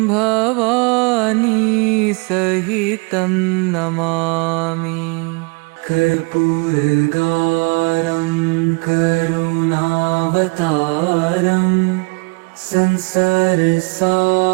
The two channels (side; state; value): left; quieter; 29.9 dB